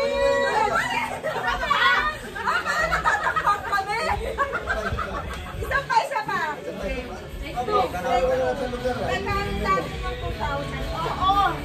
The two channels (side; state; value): both; identical; correlation 1.00